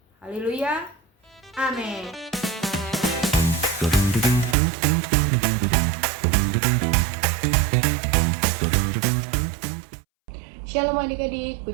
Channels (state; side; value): drops out; left; at 4.5 s